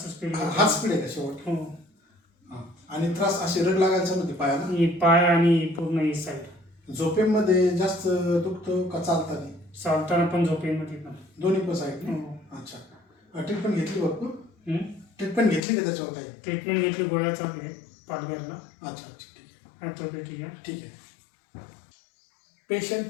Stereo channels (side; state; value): right; drops out; at 15.6 s